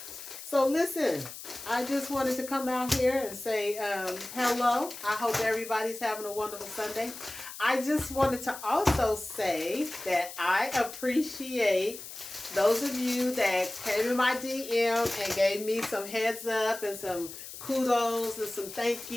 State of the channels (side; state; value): left; noise; hiss, 12 dB below the sound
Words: So listen, I just wanted to come out here and say hello. I hope everybody's having a wonderful Sunday. I just wanted to also say that I appreciate those of you that came in my DM and gave me some heads up and some kudos and some thank